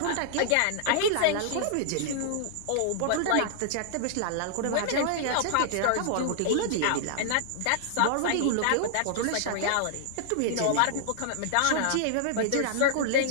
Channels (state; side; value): different; both; correlation -0.01